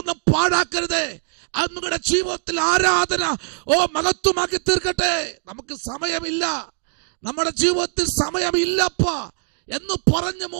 പാഴാക്കരുതേ. അത് നിങ്ങളുടെ ജീവിതത്തിൽ ആരാധന മഹത്വമാക്കി തീർക്കട്ടെ. നമുക്ക് സമയമില്ല, നമ്മുടെ ജീവിതത്തിൽ സമയമില്ലപ്പാ എന്ന് പറഞ്ഞ്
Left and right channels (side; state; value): left; silent; digital silence